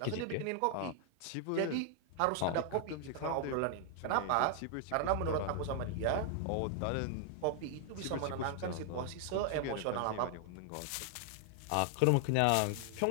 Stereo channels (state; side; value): different; both; correlation 0.00